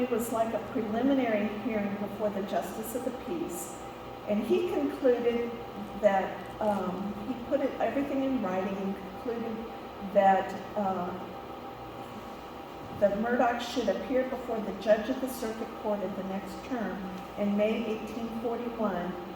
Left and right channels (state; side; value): identical; both; correlation 1.00